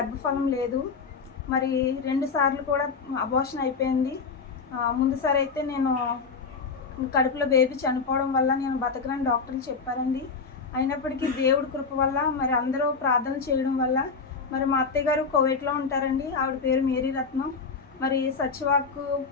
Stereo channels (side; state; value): right; quieter; 4.9 dB